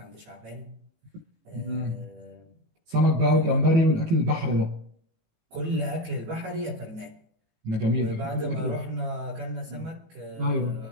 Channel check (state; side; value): late; left; 18 ms